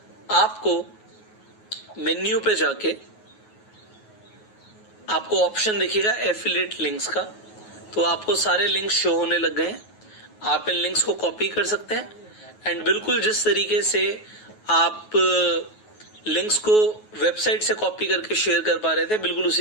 आपको मेन्यू पे जाके आपको ऑप्शन दिखेगा एफिलिएट लिंक्स का। तो आपको सारे लिंक्स शो होने लग गए हैं। आप इन लिंक्स को कॉपी कर सकते हैं एंड बिल्कुल जिस तरीके से आप लिंक्स को वेबसाइट से कॉपी करके शेयर कर पा रहे थे, बिल्कुल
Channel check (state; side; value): late; right; 9.4 ms